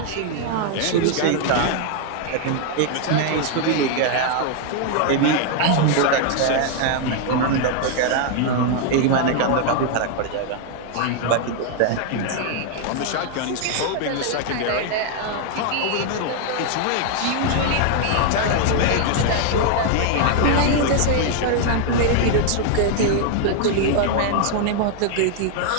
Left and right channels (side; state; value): both; different; correlation 0.00